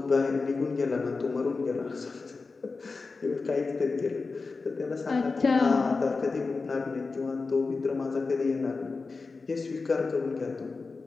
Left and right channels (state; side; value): quieter; right; 4.2 dB